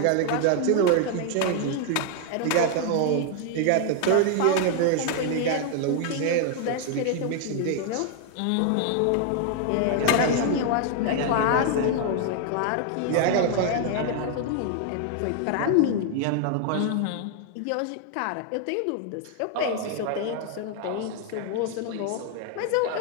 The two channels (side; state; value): both; different; correlation 0.00